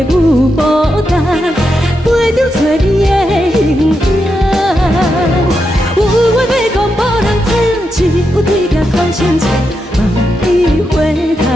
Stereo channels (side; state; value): both; normal; correlation 0.85